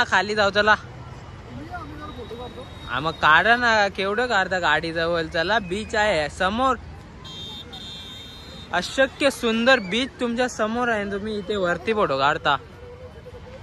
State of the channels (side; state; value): both; identical; correlation 1.00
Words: खाली जाऊ चला मग काढा ना केवढं काढता गाडी जवळ चला बीच आहे समोर अशक्य सुंदर बीच तुमच्या समोर आहे तुम्ही इथे वरती फोटो काढता